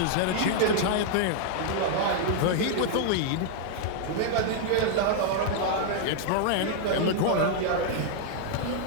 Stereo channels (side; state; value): both; different; correlation 0.00